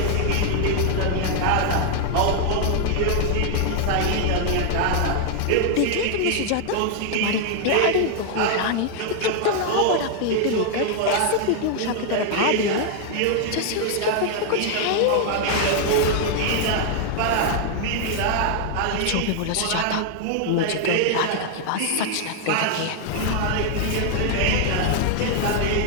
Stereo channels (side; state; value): both; different; correlation 0.00